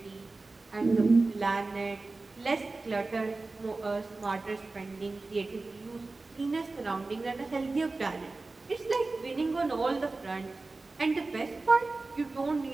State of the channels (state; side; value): quieter; left; 3.5 dB